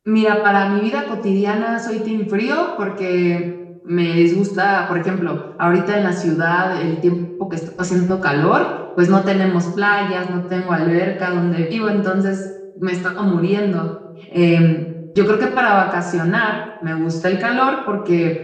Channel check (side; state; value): both; identical; correlation 1.00